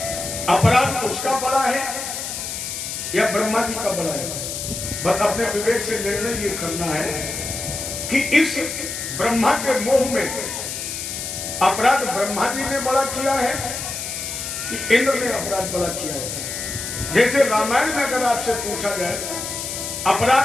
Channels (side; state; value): left; noise; hiss, 5 dB below the sound